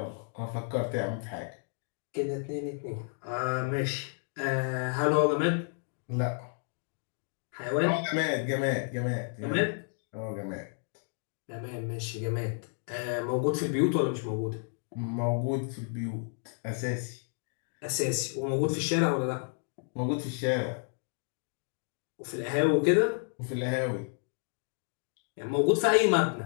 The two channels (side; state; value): right; silent; 57 dB below the other